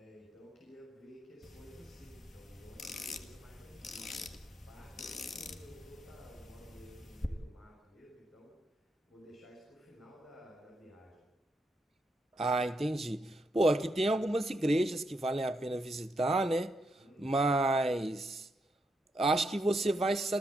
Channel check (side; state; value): both; normal; correlation 0.81